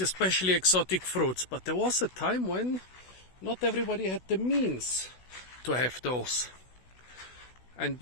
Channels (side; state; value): right; late; 16 ms